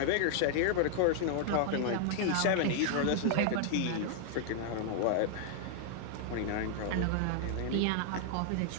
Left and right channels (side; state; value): both; different; correlation 0.00